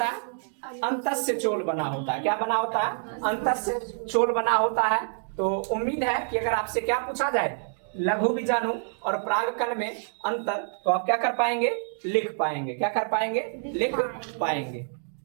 है? अंतस्थ चोल बना होता है। क्या बना होता है? अंतस्थ चोल बना होता है। तो उम्मीद है कि अगर आपसे क्या पूछा जाए लघु बीजाणु और पराग कण में अंतर तो आप क्या कर पाएंगे? लिख पाएंगे। क्या कर पाएंगे? लिख पाएंगे।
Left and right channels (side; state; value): left; silent; digital silence